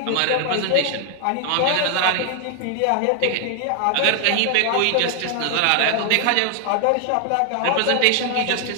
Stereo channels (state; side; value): different; both; correlation 0.00